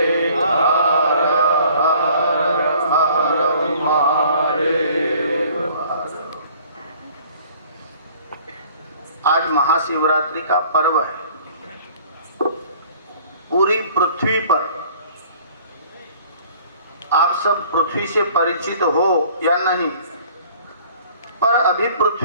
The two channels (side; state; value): both; inverted; correlation -0.53